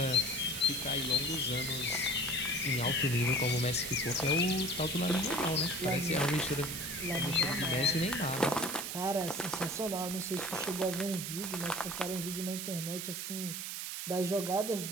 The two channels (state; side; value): noise; right; hiss, 5 dB below the sound